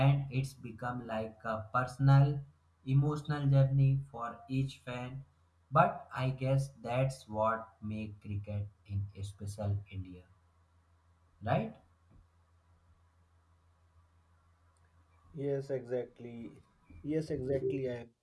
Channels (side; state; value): both; identical; correlation 1.00